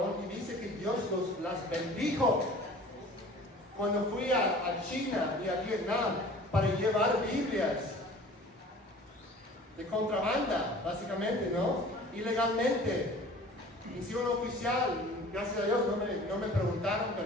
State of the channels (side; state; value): both; normal; correlation 0.45